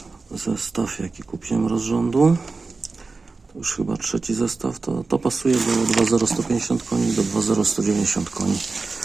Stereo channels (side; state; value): left; quieter; 4.0 dB